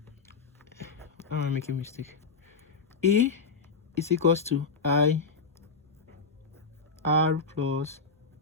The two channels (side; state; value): right; quieter; 4.6 dB